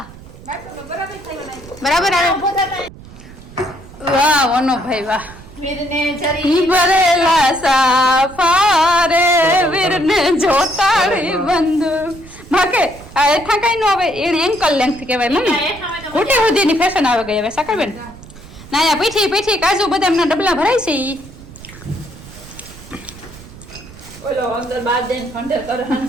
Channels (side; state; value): right; noise; rumble, 18 dB below the sound